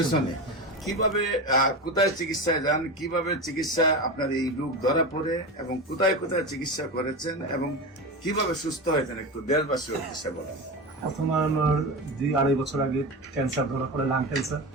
কিভাবে কোথায় চিকিৎসায় যান, কিভাবে চিকিৎসা আপনার এই রোগ ধরা পড়ে, এবং কোথায় কোথায় চিকিৎসা করেছেন, এবং কিভাবে সুস্থ হয়েছেন একটু দেশবাসীর উদ্দেশ্যে বলেন। প্রথমে আমার 2-2.5 বছর আগে ক্যান্সার ধরা পড়ে, লাং ক্যান্সার।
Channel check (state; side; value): normal; both; correlation 0.22